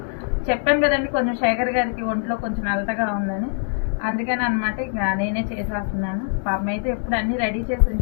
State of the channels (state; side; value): silent; right; 64 dB below the other